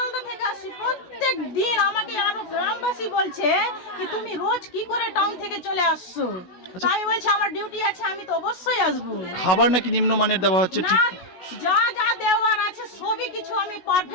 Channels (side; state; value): right; late; 16 ms